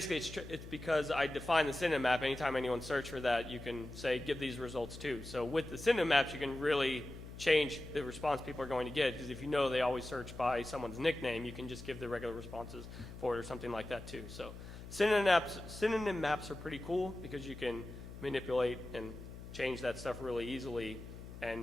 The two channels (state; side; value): noise; left; hum, 13 dB below the sound